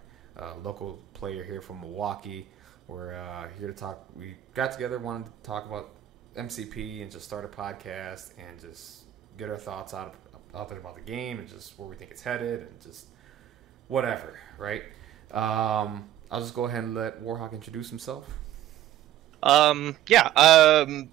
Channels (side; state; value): left; quieter; 12.7 dB